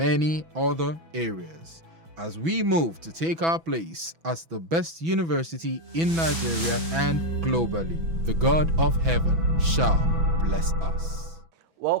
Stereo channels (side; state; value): left; late; 6.1 ms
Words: other areas, as we move to take our place as the best university in Nigeria and globally. The God of heaven shall bless us.